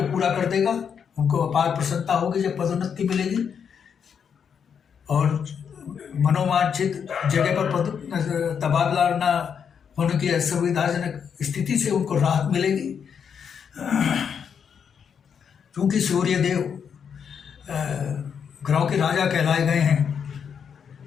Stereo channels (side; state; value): right; quieter; 7.2 dB